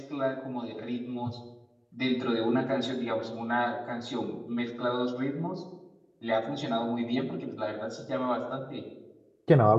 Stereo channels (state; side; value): identical; both; correlation 1.00